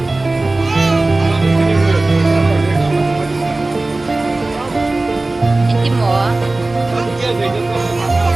Anh chim mùa.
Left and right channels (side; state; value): left; quieter; 3.0 dB